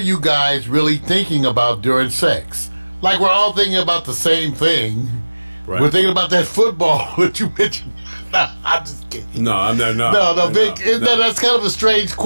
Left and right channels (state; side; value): inverted; both; correlation -1.00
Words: guys really thinking about during sex?" Like we're all thinking about the same thing. Right. We're thinking about that football that you mentioned. No, I'm just kidding. No, I'm not. No, Vic. That's kind of a strange